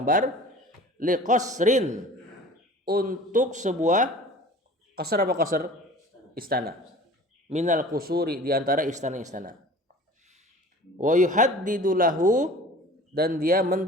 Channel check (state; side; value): normal; both; correlation 0.43